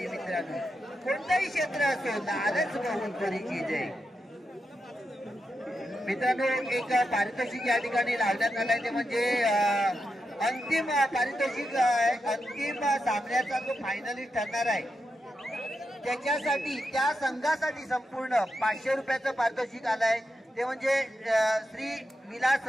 मित्रांनो. कोणतंही क्षेत्र असो लालच बहुत बुरी चीज आहे. मित्रांनो एक पारितोषिक या ठिकाणी लावण्यात आलाय. ते म्हणजे अंतिम पारितोषिक अंतिम सामन्याचा जो फायनलिस्ट ठरणार आहे त्याच्यासाठी त्या संघासाठी संपूर्ण 500 रुपयाचं पारितोषिक आलंय. ते म्हणजे श्री विलास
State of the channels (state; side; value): normal; both; correlation 0.87